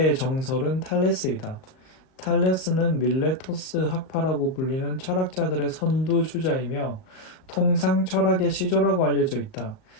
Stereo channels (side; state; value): right; late; 38 ms